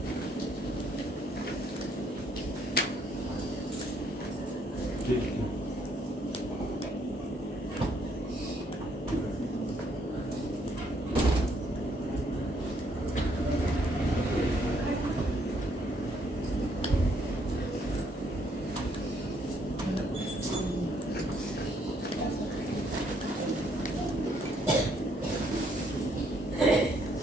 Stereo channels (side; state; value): both; normal; correlation 0.69